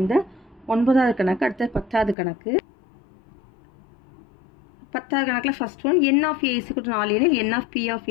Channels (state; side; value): drops out; right; at 2.1 s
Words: இந்த 9வது கணக்கு அடுத்த 10வது கணக்கு 10வது கணக்கில் first one n of a = 4 எனில் n of p of